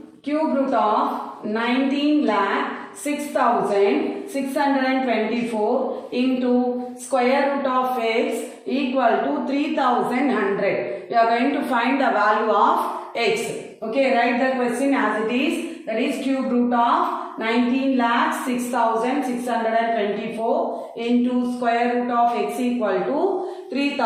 cube root of 19 lakh 6,624 into square root of x equal to 3,100. We are going to find the value of x. Okay, write the question as it is. That is cube root of 19 lakh 6,624 into square root of x equal to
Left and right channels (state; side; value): identical; both; correlation 1.00